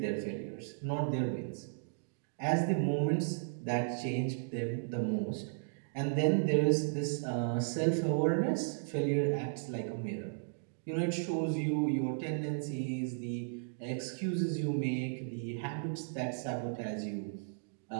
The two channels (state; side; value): silent; left; digital silence